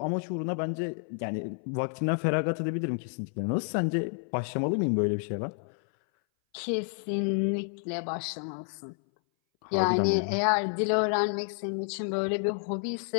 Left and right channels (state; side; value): silent; right; 58 dB below the other